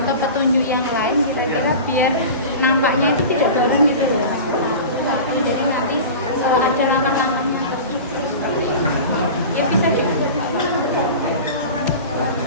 petunjuk yang lain kira-kira biar nampaknya itu tidak bareng gitu loh. Jadi nanti ada langkah-langkahnya. Ya bisa juga.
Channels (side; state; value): both; inverted; correlation -0.33